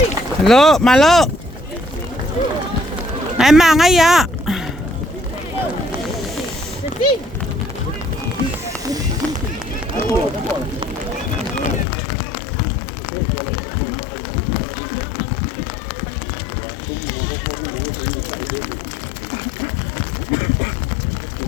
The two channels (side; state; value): right; drops out; at 11.9 s